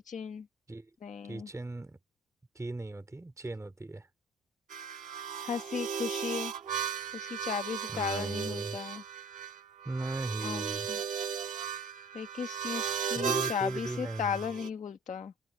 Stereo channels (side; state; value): both; normal; correlation 0.46